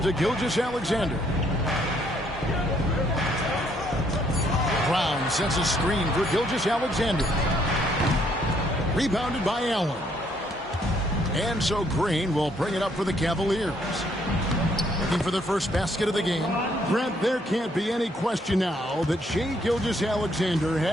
to Gilgeous-Alexander. Brown sets a screen for Gilgeous-Alexander. Rebounded by Allen. And so Green will bring it up for the Cavaliers. Looking for the first basket of the game. Brent, there can't be any question now that Shai Gilgeous-Alexander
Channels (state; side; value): normal; both; correlation 0.68